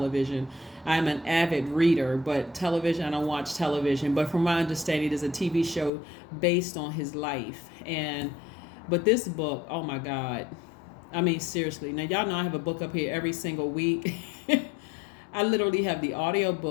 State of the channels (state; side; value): drops out; right; at 5.9 s